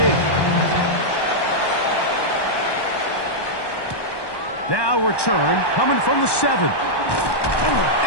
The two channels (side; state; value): right; late; 1.1 ms